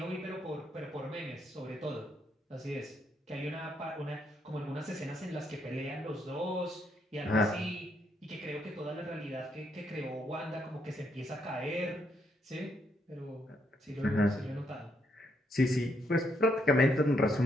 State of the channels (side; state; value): both; normal; correlation 0.76